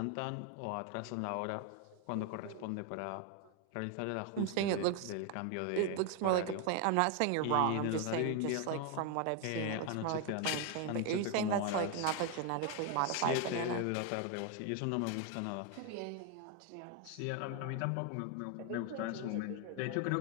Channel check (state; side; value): different; both; correlation 0.01